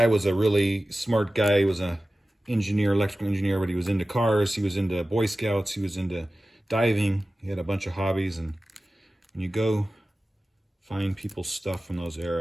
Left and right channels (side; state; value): both; normal; correlation 0.95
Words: was a really smart guy. He was a engineer, electrical engineer, but he was into cars. He was into Boy Scouts. He was into diving. He had a bunch of hobbies, and when you go find people's stuff from those